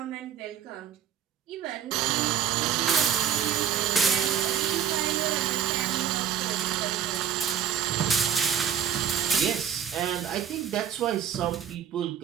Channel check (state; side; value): quieter; left; 8.7 dB